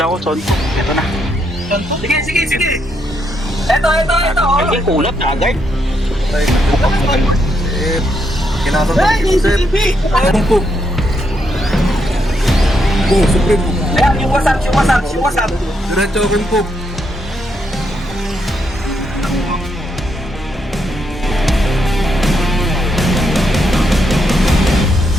ako son. Ito na. Sige. Ito. Yung kulot agad. Kinakabahan ko, Sir. Anong po? Supreme po. Ayan, yung wasap. Diretso open po.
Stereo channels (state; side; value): normal; both; correlation 0.78